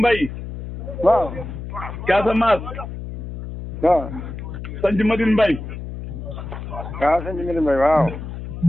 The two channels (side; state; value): left; noise; hum, 9 dB below the sound